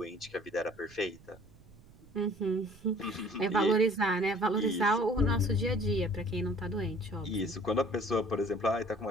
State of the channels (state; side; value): noise; right; rumble, 23 dB below the sound